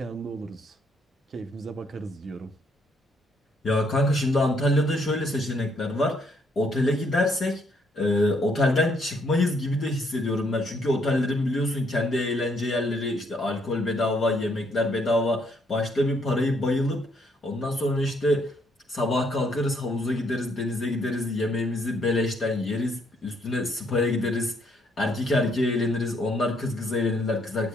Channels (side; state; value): both; normal; correlation 0.70